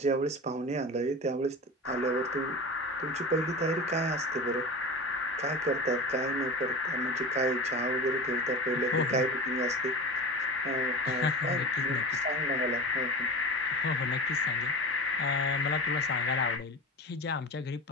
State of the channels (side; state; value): both; normal; correlation 0.30